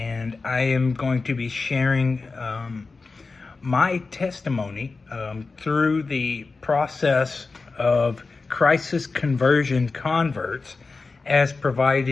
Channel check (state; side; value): quieter; right; 4.0 dB